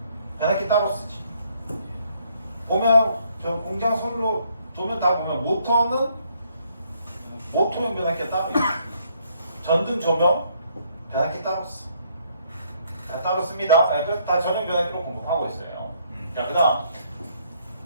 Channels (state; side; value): inverted; both; correlation -0.69